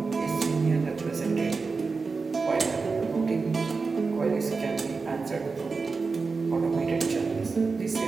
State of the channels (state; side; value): quieter; left; 4.4 dB